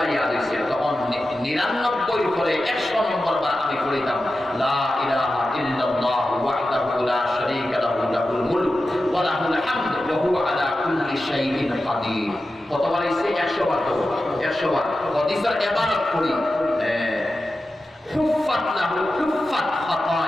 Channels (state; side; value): normal; both; correlation 0.92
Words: ইয়াদ হইছে তখন 99 পরে 100 নম্বর বার আমি পড়িতাম লা ইলাহা ইল্লাল্লাহু ওয়াহদাহু লা শারীকা লাহু লাহুল মুলক ওয়া লাহুল হামদু ওয়া হুয়া আলা কুল্লি শাইইন কাদির কতবার হইছে 100 বার তো 100 বার হাদিসের ইবারত পড়ি হুফাত লাহু হুফাত